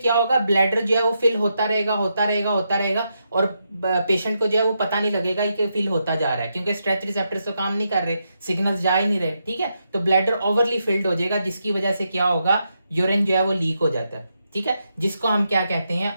होगा, ब्लैडर जो है वो फिल होता रहेगा, होता रहेगा, होता रहेगा, और पेशेंट को जो है वो पता नहीं लगेगा कि फिल होता जा रहा है, क्योंकि स्ट्रेच रिसेप्टर्स तो काम नहीं कर रहे, सिग्नल्स जा ही नहीं रहे। ठीक है, तो ब्लैडर ओवरली फिल्ड हो जाएगा, जिसकी वजह से क्या होगा, यूरिन जो है वो लीक हो जाता है। ठीक है, जिसको हम क्या कहते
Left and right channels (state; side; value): inverted; both; correlation -0.83